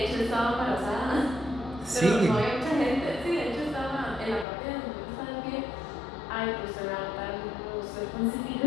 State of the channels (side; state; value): right; drops out; at 4.5 s